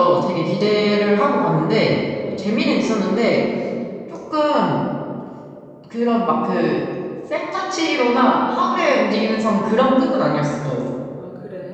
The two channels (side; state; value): both; identical; correlation 1.00